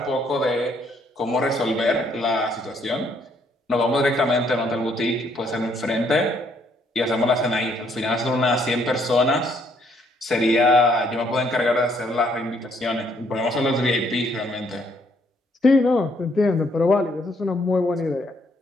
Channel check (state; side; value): normal; both; correlation 0.68